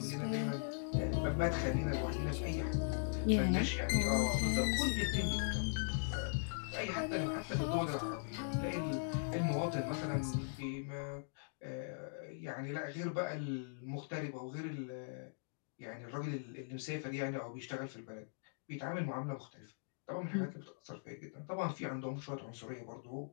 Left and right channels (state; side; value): silent; right; digital silence